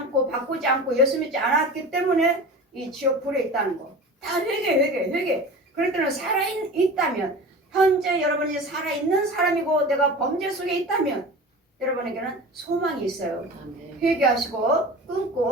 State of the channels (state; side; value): normal; both; correlation 0.34